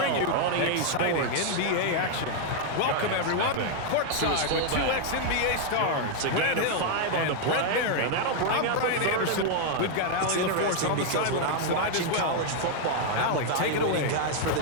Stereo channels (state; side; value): different; both; correlation 0.00